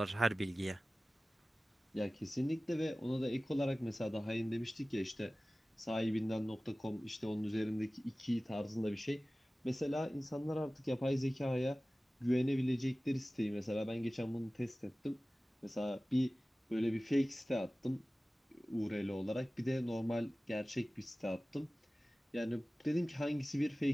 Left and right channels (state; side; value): normal; both; correlation 0.97